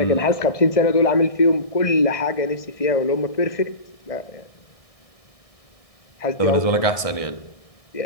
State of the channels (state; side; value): late; right; 1.6 ms